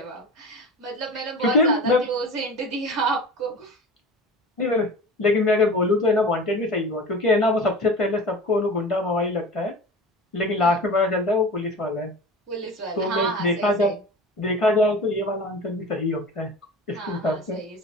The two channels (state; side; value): normal; both; correlation 0.35